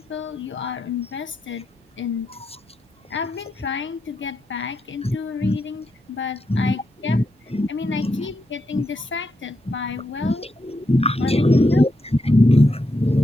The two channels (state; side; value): normal; both; correlation 0.82